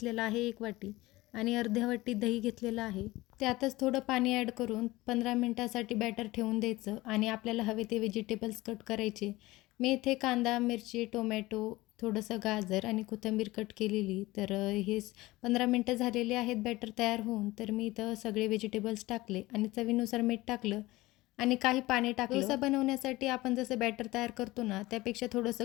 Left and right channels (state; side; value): quieter; right; 19.3 dB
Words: आहे 1 वाटी आणि अर्ध्या वाटी दही घेतलेलं आहे. त्यातच थोडं पाणी ॲड करून 15 मिनिटासाठी बॅटर ठेवून द्यायचं आणि आपल्याला हवे ते व्हेजिटेबल्स कट करायचे. मी इथे कांदा, मिरची, टोमॅटो, थोडंसं गाजर आणि कोथिंबीर कट केलेली. तर हे 15 मिनटं झालेले आहेत बॅटर तयार होऊन. तर मी इथं सगळे व्हेजिटेबल्स टाकले आणि चवीनुसार मीठ टाकलं आणि काही पाणी टाकलं. डोसा बनवण्यासाठी आपण जसं बॅटर तयार करतो ना, त्यापेक्षा थोडंसं